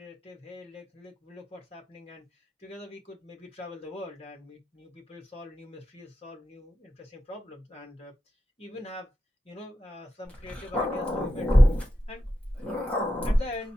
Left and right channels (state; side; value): normal; both; correlation 0.88